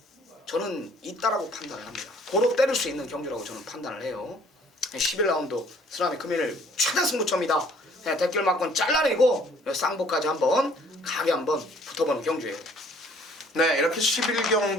저는 있다라고 판단을 합니다. 고로 때릴 수 있는 경주라고 저는 판단을 해요. 11라운드 쓰나미 금일 최대 승부처입니다. 대길 막건 잘라내고 쌍복까지 한번 가게 한번 붙어보는 경주예요. 네, 이렇게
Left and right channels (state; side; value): normal; both; correlation 0.58